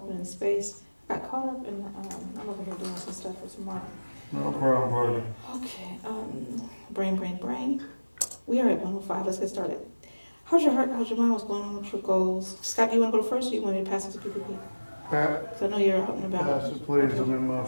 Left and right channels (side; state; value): both; inverted; correlation -1.00